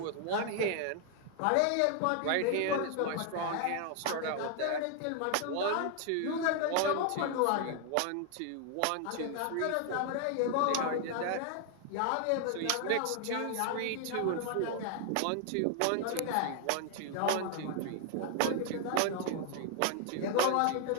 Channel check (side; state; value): both; different; correlation 0.00